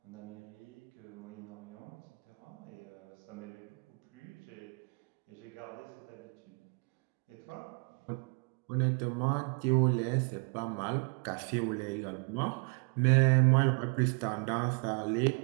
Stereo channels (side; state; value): left; quieter; 37.1 dB